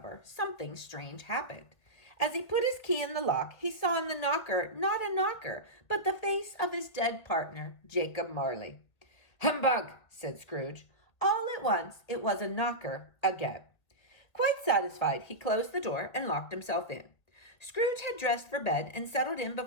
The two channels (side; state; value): right; late; 1.6 ms